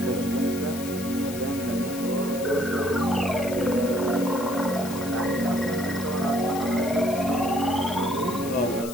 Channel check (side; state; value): left; noise; hiss, 12 dB below the sound